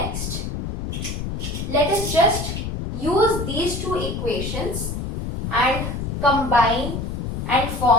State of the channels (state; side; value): noise; left; rumble, 4 dB below the sound